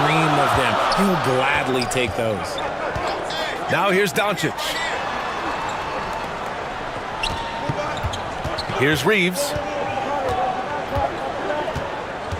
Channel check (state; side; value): identical; both; correlation 1.00